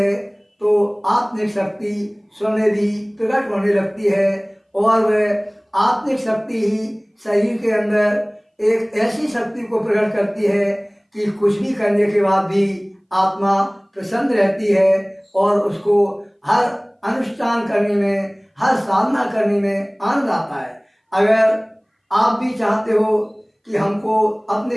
तो आत्मिक शक्ति स्वयं भी प्रकट होने लगती है, और वह आत्मिक शक्ति ही शरीर के अंदर एक ऐसी शक्ति को प्रकट करती है कि कुछ भी करने के बाद भी आत्मा प्रसन्न रहती है, और उसको हर अनुष्ठान करने में, हर साधना करने में आनंद आता है। अगर आप भी चाहते हो कि हमको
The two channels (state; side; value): identical; both; correlation 1.00